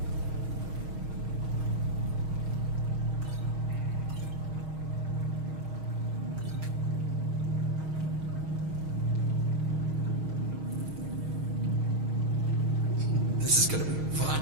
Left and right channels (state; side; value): late; left; 6.4 ms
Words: This is gonna be fun.